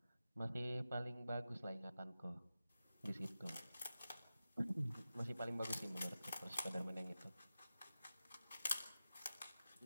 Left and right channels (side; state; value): both; inverted; correlation -0.93